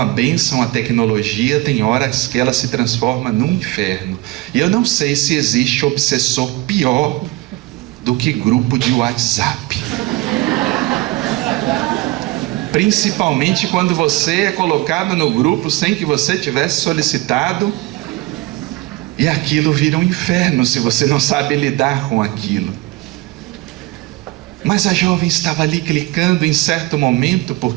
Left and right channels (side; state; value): left; quieter; 19.8 dB